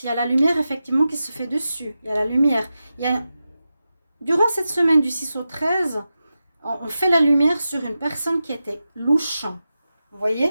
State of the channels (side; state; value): both; inverted; correlation -0.92